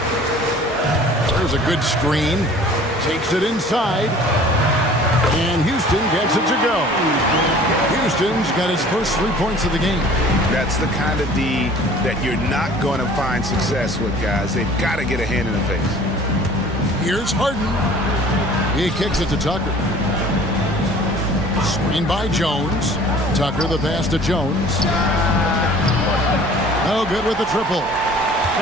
There's a good screen. Takes it inside. And Houston gets it to go. Houston's got his first 3 points of the game. That's the kind of D that you're not going to find success with, guys. They've got to get a hand in the face. Here's Harden. He kicks it to Tucker. Screen by Jones. Tucker the pass to Jones. Oh, good with the triple.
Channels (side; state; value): both; normal; correlation 0.48